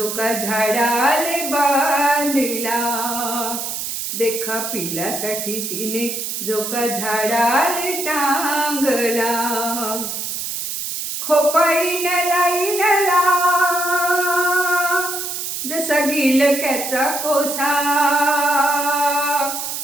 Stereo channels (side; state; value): right; noise; hiss, 4 dB below the sound